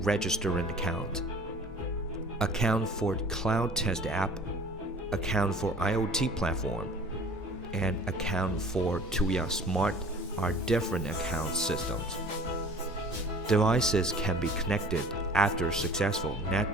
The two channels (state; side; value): normal; both; correlation 0.47